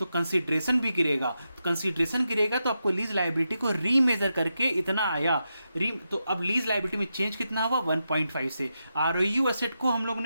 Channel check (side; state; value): both; inverted; correlation -0.87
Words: कंसीडरेशन भी गिरेगा, तो कंसीडरेशन गिरेगा तो आपको लीज लायबिलिटी को रीमेजर करके इतना आया तो अब लीज लायबिलिटी में चेंज कितना हुआ 1.5 से। आरओयू एसेट को हम लोगों